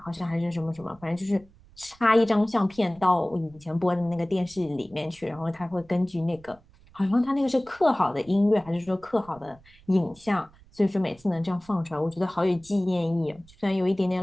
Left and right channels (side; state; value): right; noise; rumble, 26 dB below the sound